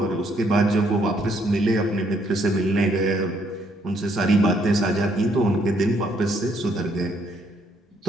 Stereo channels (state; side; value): normal; both; correlation 0.69